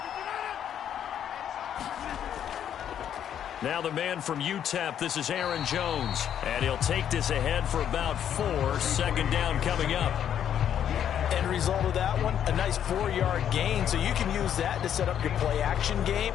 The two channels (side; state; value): right; quieter; 9.5 dB